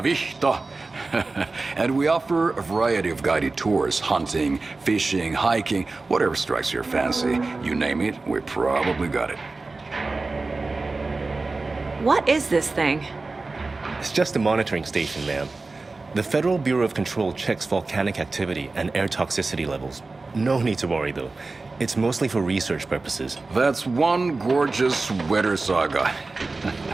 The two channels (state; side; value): quieter; left; 3.6 dB